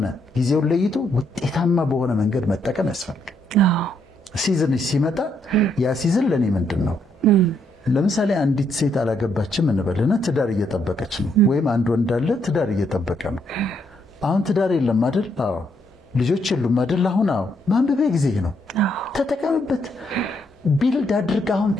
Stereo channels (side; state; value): both; normal; correlation 0.74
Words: ጊዜውን ለይቶ ውጤታማ በሆነ መንገድ መጠቀም ያስፈልጋል። ሲዝን ሲመጣ ያ ሲዝን ለኔ ምንድነው? ለምሳሌ አንዲት ሴት አላገባችም እንበልና ትዳር እየጠበቀች ነው፣ ወይም አንድ ወንድ አለ ትዳር እየጠበቀ ነው። አሁን ትዳር የለም አይደል? አዎ። ልጆች የሉም አይደል? አሁን አዎ። ማንበቢያ ጊዜ ነው፣ ተጠቀምበት። ቢልድ አድርግ። አሁን